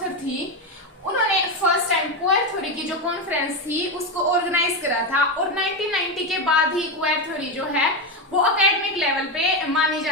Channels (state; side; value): normal; both; correlation 0.12